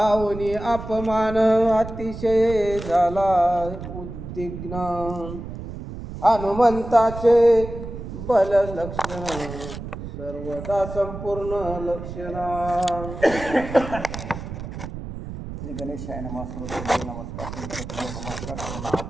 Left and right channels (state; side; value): noise; right; rumble, 9 dB below the sound